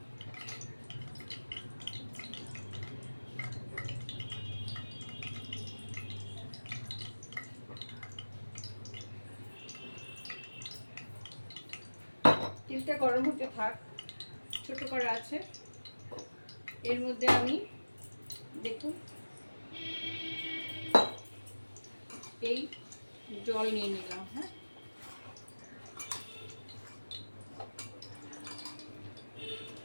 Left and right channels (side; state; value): both; inverted; correlation -1.00